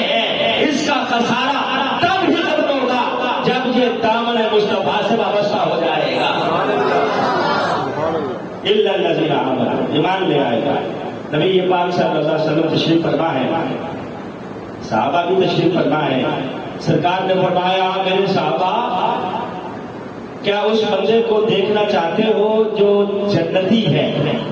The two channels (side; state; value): both; identical; correlation 1.00